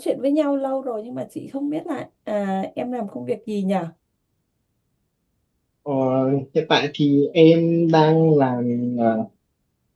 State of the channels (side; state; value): both; identical; correlation 1.00